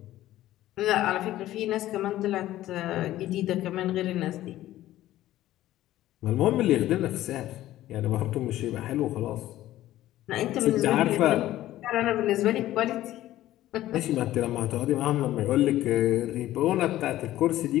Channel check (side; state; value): right; quieter; 14.5 dB